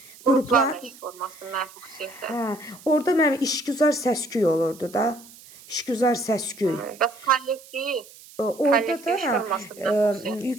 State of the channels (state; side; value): noise; right; hiss, 21 dB below the sound